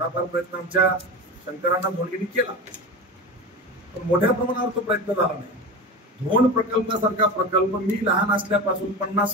प्रयत्न आमच्या शंकरांना धोंडगेंनी केला पण मोठ्या प्रमाणावर तो प्रयत्न झाला नाही. धोंड प्रकल्पासारखा प्रकल्प मी लहान असल्यापासून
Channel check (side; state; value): both; normal; correlation 0.26